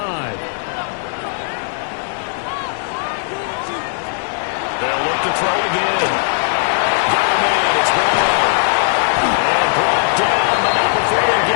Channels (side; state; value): right; silent; 68 dB below the other